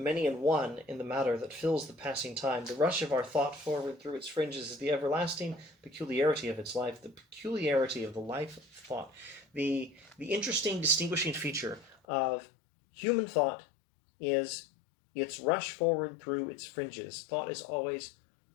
and one in the matter that fills the passing time. The rush of our thought forward through its fringes is the everlasting peculiarity of its life, the peculiarity of the life of thought. The interesting distinguishing feature of human thought is its rush forward through its fringes. Thought is always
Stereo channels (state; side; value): drops out; right; at 12.0 s